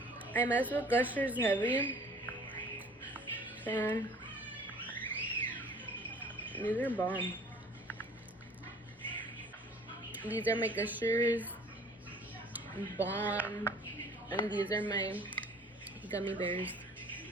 I mess with gushers heavy. So these are bomb. These are my gushers, bomb, and these are my gummy bears.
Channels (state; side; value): normal; both; correlation 0.50